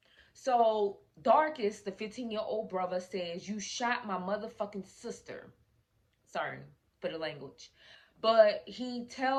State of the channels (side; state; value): both; identical; correlation 1.00